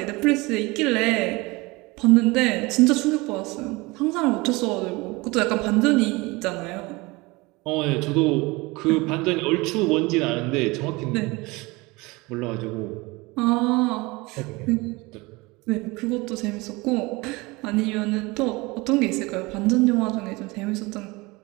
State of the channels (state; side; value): quieter; left; 23.7 dB